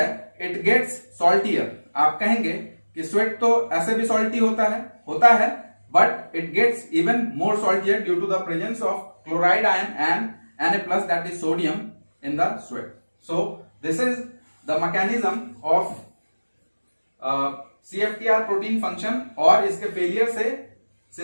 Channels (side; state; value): both; inverted; correlation -1.00